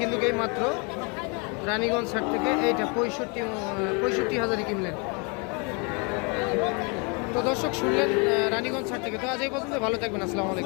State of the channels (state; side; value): quieter; right; 33.0 dB